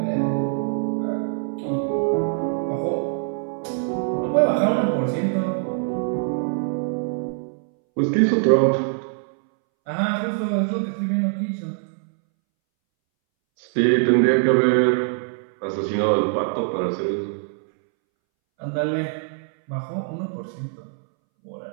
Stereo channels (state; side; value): silent; left; 63 dB below the other